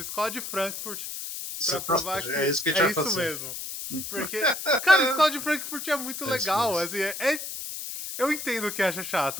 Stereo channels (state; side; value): noise; left; hiss, 7 dB below the sound